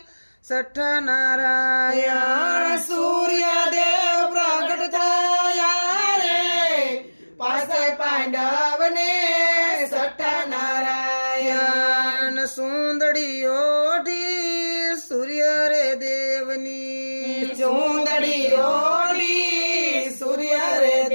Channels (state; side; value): inverted; both; correlation -1.00